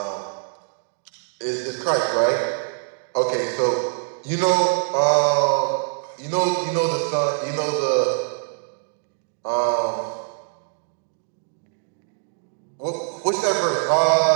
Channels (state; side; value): silent; left; digital silence